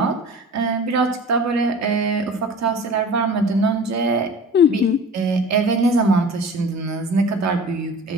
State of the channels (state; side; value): normal; both; correlation 0.41